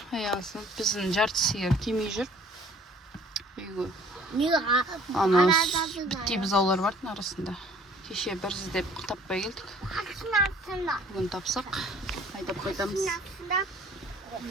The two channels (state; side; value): normal; both; correlation 0.54